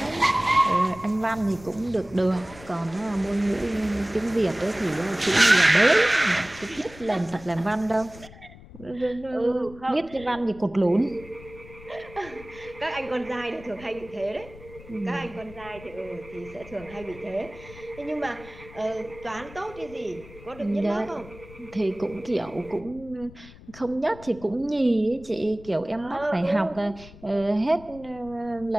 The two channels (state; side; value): noise; left; rumble, 19 dB below the sound